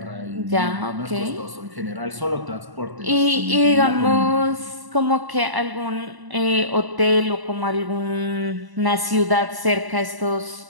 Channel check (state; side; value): late; left; 1.0 ms